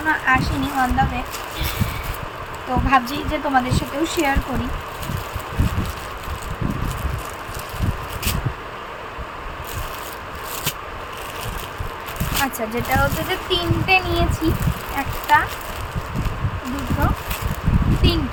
আসেনি অন দ্য ওয়ে। তো তো ভাবছি যে তোমাদের সাথেও শেয়ার করি। আচ্ছা, যেটা হচ্ছে যে 3টে নিয়েছি, 1 2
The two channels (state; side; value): identical; both; correlation 1.00